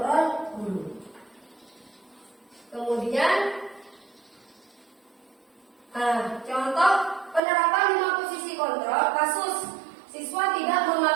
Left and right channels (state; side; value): drops out; left; at 7.4 s